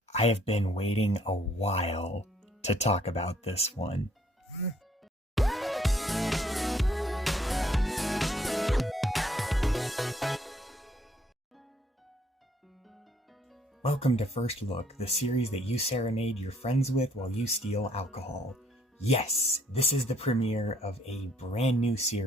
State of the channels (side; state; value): both; normal; correlation 0.64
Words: I have been waiting a while to talk about this one. Welcome to First Look, the series that you serenade your friends with while you steal alcohol. Yes, this is the premiere of a brand new